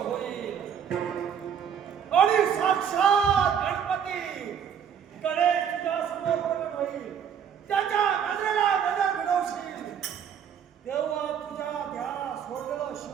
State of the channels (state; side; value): quieter; left; 8.0 dB